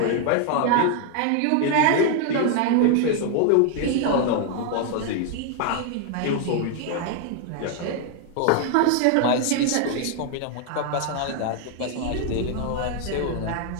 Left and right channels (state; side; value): different; both; correlation 0.00